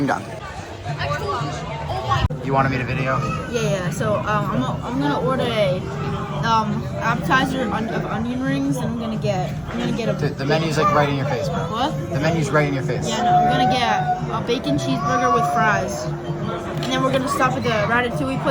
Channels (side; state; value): both; identical; correlation 1.00